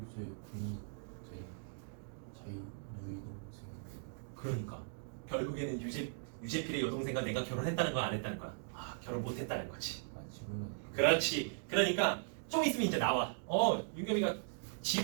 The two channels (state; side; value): silent; left; digital silence